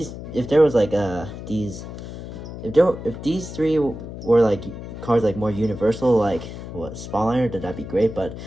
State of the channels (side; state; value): left; noise; hum, 10 dB below the sound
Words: If there was like if these 3 were like cards like more universal, like what Spawner, then that'd be great. But